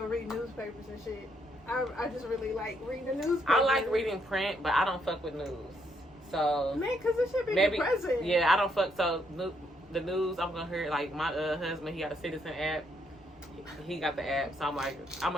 reading newspapers and shit. I just really like reading the newspaper. I like reading print, but I don't fuck with news. So man, because it should be depressing. Yeah, I don't fuck. So the news, I'm gonna hear, like, my husband, he got a Citizen app. He got the app, so I'm like, I'm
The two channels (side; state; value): both; normal; correlation 0.74